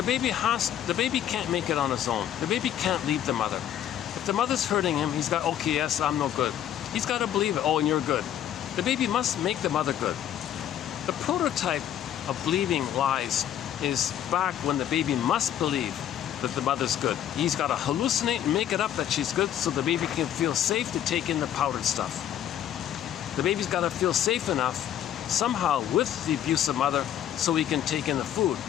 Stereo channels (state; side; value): quieter; right; 10.7 dB